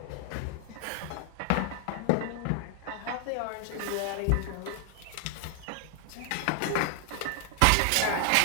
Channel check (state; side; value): different; both; correlation 0.00